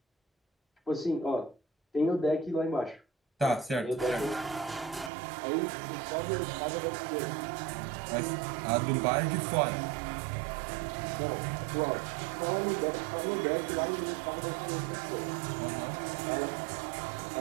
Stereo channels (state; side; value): drops out; left; at 5.1 s